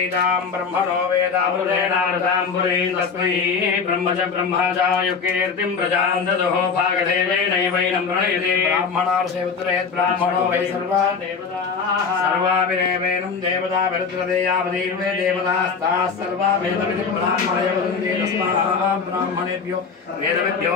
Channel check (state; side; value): quieter; right; 5.5 dB